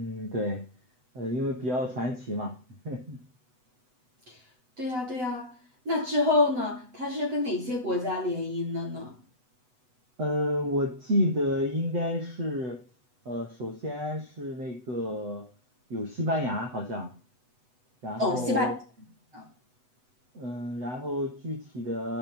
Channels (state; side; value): late; left; 8.0 ms